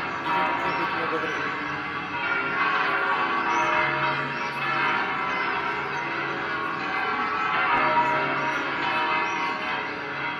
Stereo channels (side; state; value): both; identical; correlation 1.00